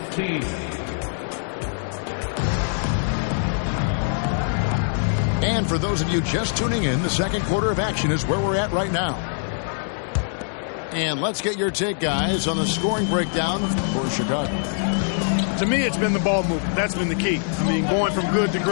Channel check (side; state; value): right; silent; digital silence